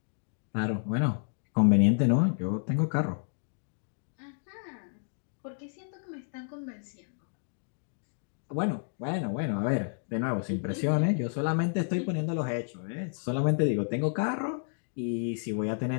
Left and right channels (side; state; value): right; silent; digital silence